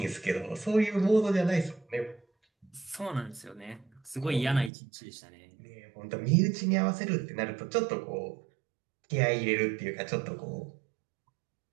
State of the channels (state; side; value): drops out; left; at 4.7 s